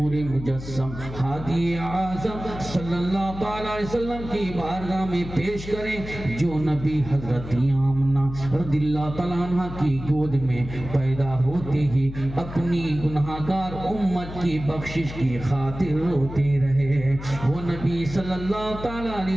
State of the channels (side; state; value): left; noise; hum, 11 dB below the sound